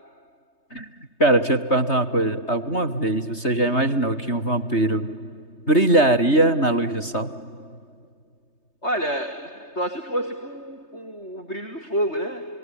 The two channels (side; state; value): right; late; 3.3 ms